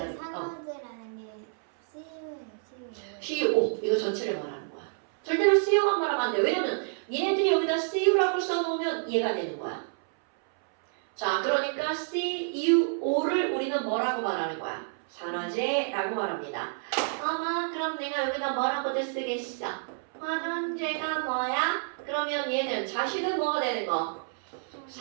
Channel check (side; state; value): left; silent; 59 dB below the other